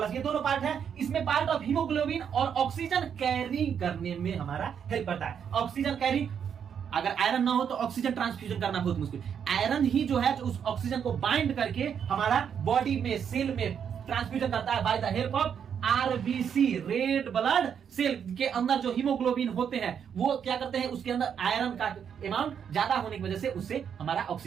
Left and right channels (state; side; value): quieter; left; 7.8 dB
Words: ये दोनों पार्ट है। इसमें पार्ट ऑफ हीमोग्लोबिन और ऑक्सीजन कैरी करने में हमारा हेल्प करता है। ऑक्सीजन कैरी, अगर आयरन ना हो तो ऑक्सीजन ट्रांसफ्यूजन करना बहुत मुश्किल। आयरन ही जो है, जो उस ऑक्सीजन को बाइंड करके हमारा बॉडी में, सेल में ट्रांसफ्यूजन करता है by the help of RBC, red blood cell के अंदर जो हीमोग्लोबिन होते हैं, वो क्या करते हैं, उसके अंदर आयरन का अमाउंट ज्यादा होने की वजह से उससे हमारा